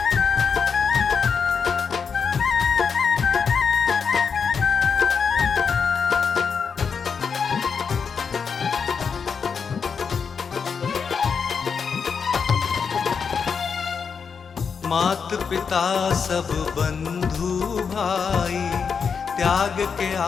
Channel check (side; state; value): right; quieter; 6.1 dB